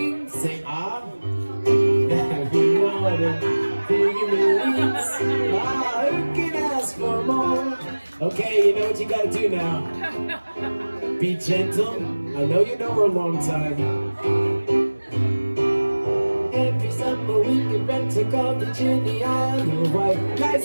say ah. Every morning, digging the leaves. Ah, who can ask for more? Okay, you know what you gotta do now. Be gentle. I know you know her a long time. Every summer we can rent a cottage in the Isle of Wight.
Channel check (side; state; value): both; inverted; correlation -1.00